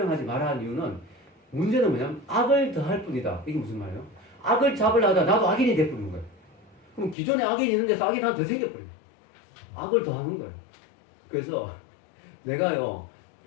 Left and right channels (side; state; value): right; drops out; at 7.2 s